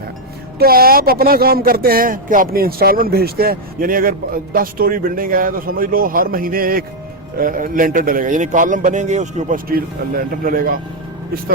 तो आप अपना काम करते हैं कि अपनी इंस्टॉलमेंट भेजते हैं। यानी अगर 10 स्टोरी बिल्डिंग है तो समझ लो हर महीने एक लेंटर डलेगा, यानी कॉलम बनेंगे उसके ऊपर स्टील लेंटर डलेगा। इस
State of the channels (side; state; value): both; normal; correlation 0.00